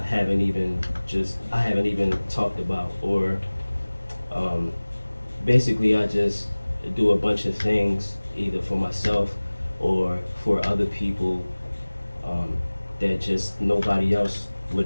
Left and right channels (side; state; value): both; inverted; correlation -1.00